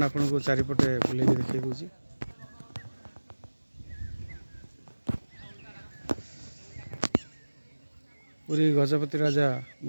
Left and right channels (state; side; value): inverted; both; correlation -1.00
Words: आपन को चारिपटे बुले देखी दूसरी। पुरी गजपति राजा